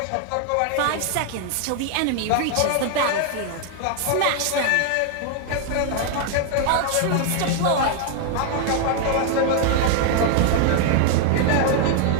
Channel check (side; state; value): both; different; correlation 0.00